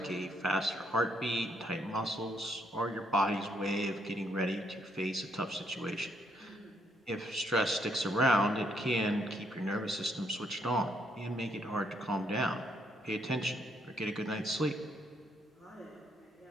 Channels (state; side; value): normal; both; correlation 0.73